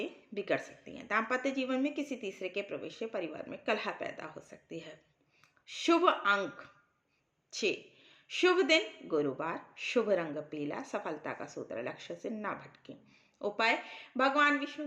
बिगड़ सकती हैं। दाम्पत्य जीवन में किसी तीसरे के प्रवेश से परिवार में कलह पैदा हो सकती है। शुभ अंक 6, शुभ दिन गुरुवार, शुभ रंग पीला, सफलता का सूत्र लक्ष्य से ना भटकें। उपाय भगवान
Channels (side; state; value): both; identical; correlation 1.00